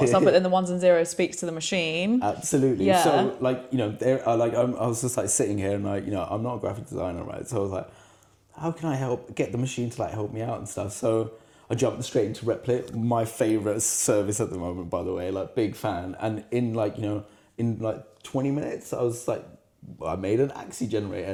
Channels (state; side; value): identical; both; correlation 1.00